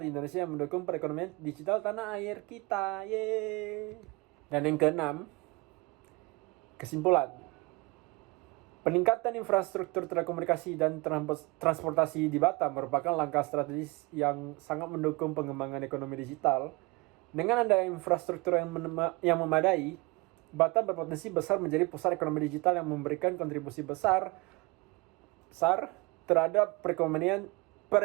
di Indonesia yang mendukung perekonomian digital tanah air kita. Yeay. Dan yang keenam, kesimpulan. Peningkatan infrastruktur telekomunikasi dan transportasi di Batam merupakan langkah strategis yang sangat mendukung pengembangan ekonomi digital. Dengan adanya infrastruktur yang memadai, Batam berpotensi besar menjadi pusat ekonomi digital yang memberikan kontribusi besar terhadap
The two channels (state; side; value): quieter; left; 25.1 dB